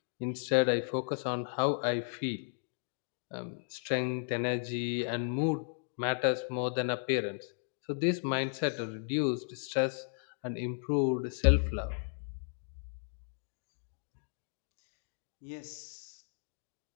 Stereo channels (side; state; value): right; silent; digital silence